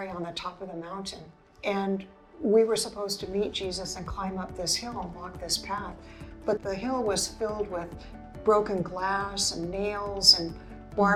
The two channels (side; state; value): both; identical; correlation 1.00